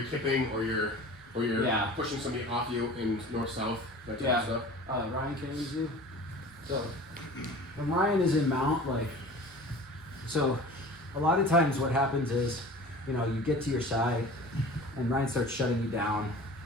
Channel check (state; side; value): normal; both; correlation 0.40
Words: kipping or you're pushing somebody off you in north-south, that type of stuff. Ryan can do. So when Ryan is in mount, so a lot of times what happens is, you get to your side and Ryan starts shutting you down,